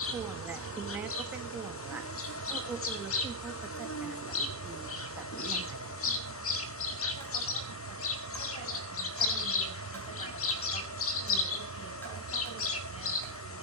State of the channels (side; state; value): both; normal; correlation -0.01